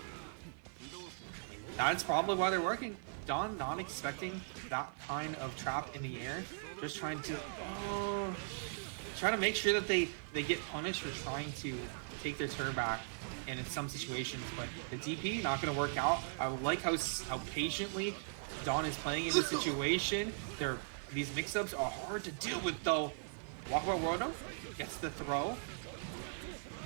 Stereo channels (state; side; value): silent; left; 52 dB below the other